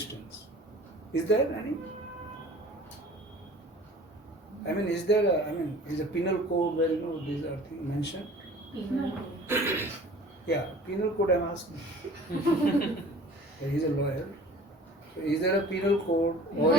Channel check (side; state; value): both; normal; correlation 0.46